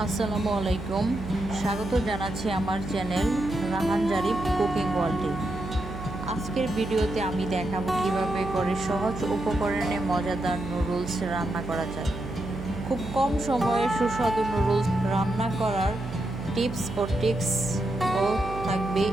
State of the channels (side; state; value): right; noise; hum, 10 dB below the sound